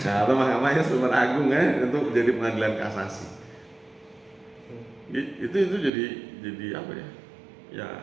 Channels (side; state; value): left; drops out; at 5.9 s